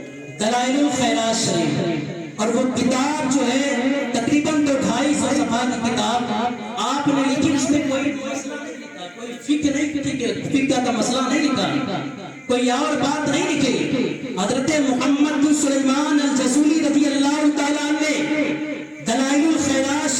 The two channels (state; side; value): identical; both; correlation 1.00